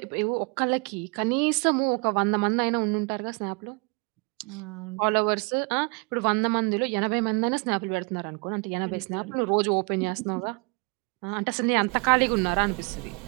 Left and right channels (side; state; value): left; quieter; 31.2 dB